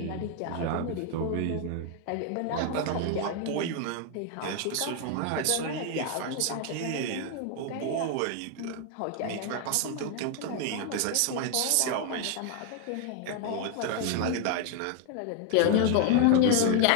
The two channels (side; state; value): both; different; correlation 0.00